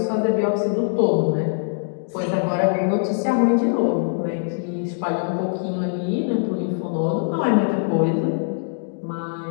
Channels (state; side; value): silent; right; digital silence